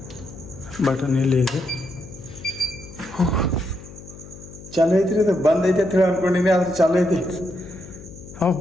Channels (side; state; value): left; noise; hum, 17 dB below the sound